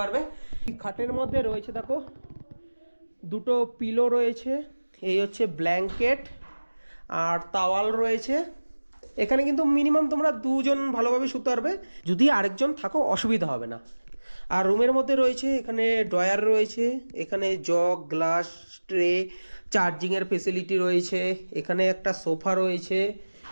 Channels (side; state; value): both; inverted; correlation -1.00